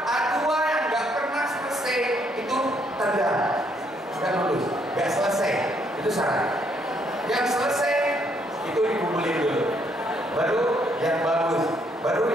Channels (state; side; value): normal; both; correlation 0.70